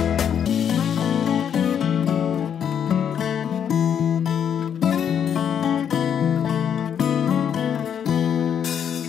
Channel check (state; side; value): quieter; right; 8.4 dB